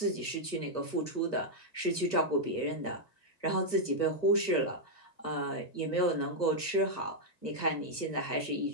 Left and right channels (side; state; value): right; late; 1.4 ms